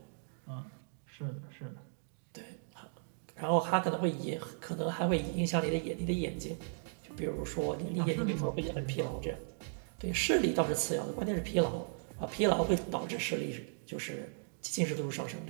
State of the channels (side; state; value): left; silent; digital silence